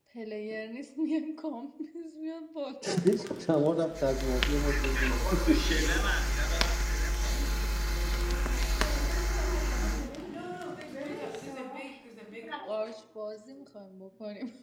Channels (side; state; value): both; identical; correlation 1.00